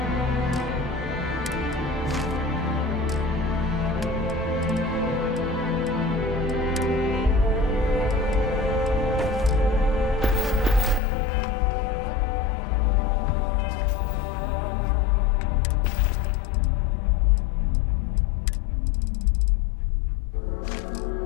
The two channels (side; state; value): right; drops out; at 11.0 s